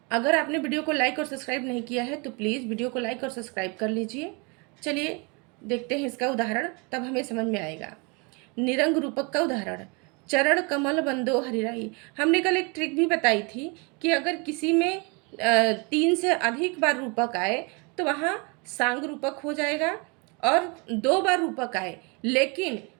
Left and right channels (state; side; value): quieter; left; 30.9 dB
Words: अगर आपने वीडियो को लाइक और सब्सक्राइब नहीं किया है तो प्लीज़ वीडियो को लाइक और सब्सक्राइब कर लीजिए। चलिए देखते हैं इसका उदाहरण, तब हमें समझ में आएगा। निरंग रूपक का उदाहरण, चरण कमल बंदो हरिराई। हमने कल एक ट्रिक भी बताई थी कि अगर किसी में 3 से अधिक बार रूपक आए तो वहाँ सांग रूपक हो जाएगा, और 2 बार रूपक आए लेकिन